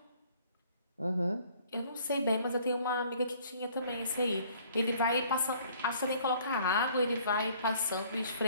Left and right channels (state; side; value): inverted; both; correlation -0.58